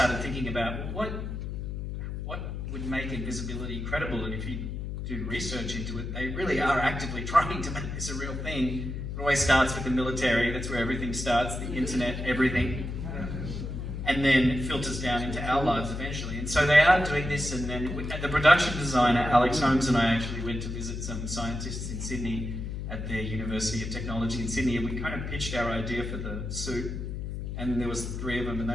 thinking about what would make Invisibility credible, and if you do research into it, they really are actively trying to make this a real thing. It always starts with the military. That's where everything starts, the internet, everything. And then it filters down into our lives eventually. And so they are doing this, and then the production designer, Alex Holmes, and I actually went to visit some scientists in Sydney at the University of Technology in Sydney, and we kind of pitched our idea for the suit. And there was 3 of them, and they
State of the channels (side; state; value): left; noise; hum, 5 dB below the sound